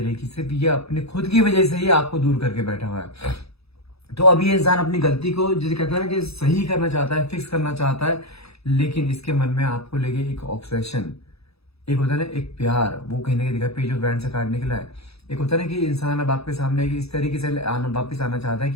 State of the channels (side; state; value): right; late; 0.78 ms